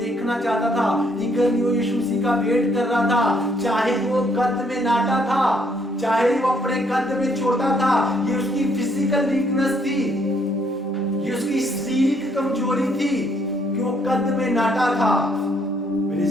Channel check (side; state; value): both; normal; correlation 0.69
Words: चाहता था, ईगरली वो यीशु मसीह का वेट कर रहा था, चाहे वो कद में नाटा था, चाहे वो अपने कद में छोटा था। ये उसकी फिजिकल वीकनेस थी, ये उसकी शारीरिक कमजोरी थी कि वो कद में नाटा था। मेरे